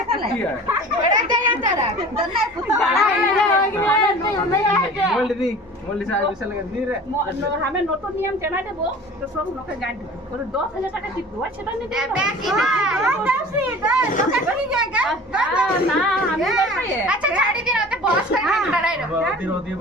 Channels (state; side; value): normal; both; correlation 0.42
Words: बड़ा दे यार डरा दन्ना पुता बड़ा मोल्ड से आज विशाल का दी रे हमें नोटो नियम चला देबो तो सब लोग के गांठ और 10,000 টাকা দিব সেটা নিতে बाकी ना ना हमें नहीं अच्छा छाड़ी दिन होते बहुत सारे डरा है होती है